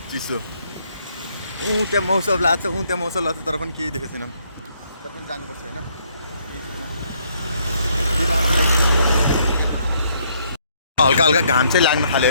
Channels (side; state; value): both; inverted; correlation -0.68